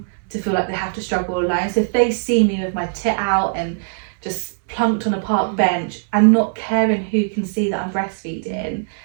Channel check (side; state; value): left; silent; 66 dB below the other